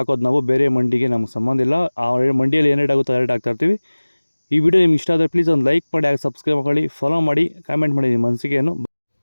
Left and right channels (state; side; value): inverted; both; correlation -1.00